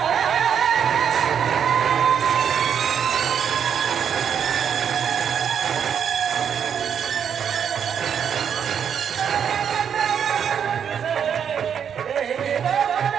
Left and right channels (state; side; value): quieter; left; 7.9 dB